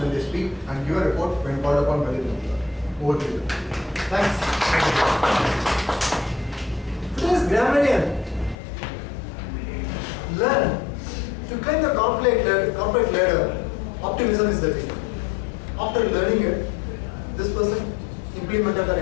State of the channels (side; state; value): right; drops out; at 8.6 s